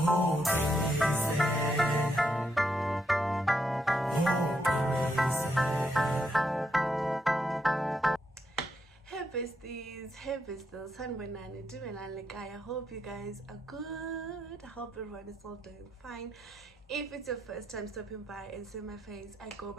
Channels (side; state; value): both; normal; correlation 0.79